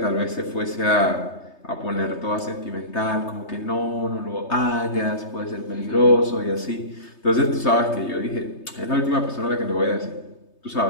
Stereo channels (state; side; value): late; right; 3.3 ms